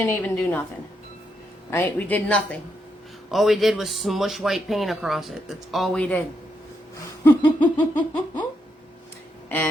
even do nothing. Right? We did nothing. All we did was smush white paint across it. That's all we did.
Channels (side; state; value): both; normal; correlation 0.80